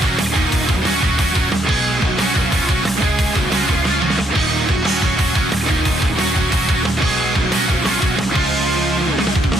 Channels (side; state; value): both; normal; correlation 0.74